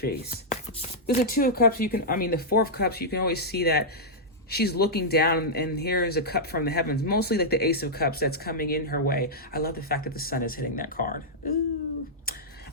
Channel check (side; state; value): both; normal; correlation -0.08